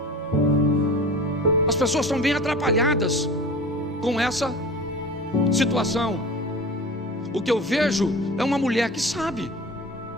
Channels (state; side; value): normal; both; correlation 0.37